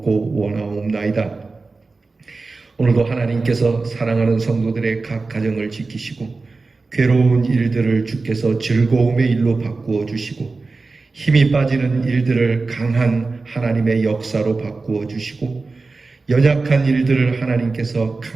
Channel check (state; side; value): quieter; left; 3.8 dB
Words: 원하옵나이다. 오늘도 하나님께서 사랑하는 성도들의 각 가정을 지키시고 괴로운 일들을 주께서 즐거움의 일로 바꾸어 주시고 힘이 빠지는 일들을 강한 하나님의 역사로 바꾸어 주시고 연약한 일들을 하나님께서